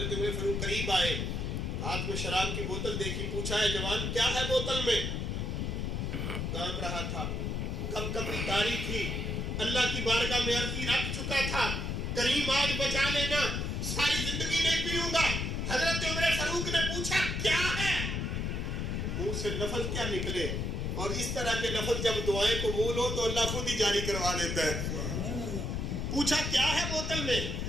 عمر فاروق قریب آئے، ہاتھ میں شراب کی بوتل دیکھی، پوچھا ہے جوان کیا ہے بوتل میں؟ کانپ رہا تھا، کب کبھی تاری تھی، اللہ کی بارگاہ میں عرضی رکھ چکا تھا، کریم آج بچا لینا، ساری زندگی نہیں پیوں گا۔ حضرت عمر فاروق نے پوچھا کیا ہے؟ منہ سے لفظ کیا نکلے، اور اس طرح کے لفظ جب دعائیں قبول ہو تو اللہ خود ہی جاری کروا دیتا ہے۔ پوچھا کیا ہے بوتل میں؟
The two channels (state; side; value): noise; left; rumble, 1 dB below the sound